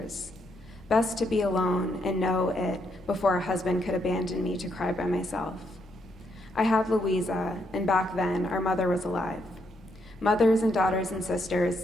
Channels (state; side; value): normal; both; correlation 0.76